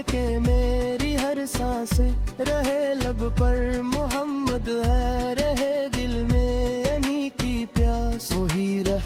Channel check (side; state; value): both; identical; correlation 1.00